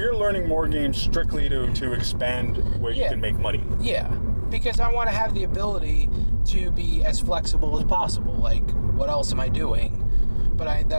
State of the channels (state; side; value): inverted; both; correlation -1.00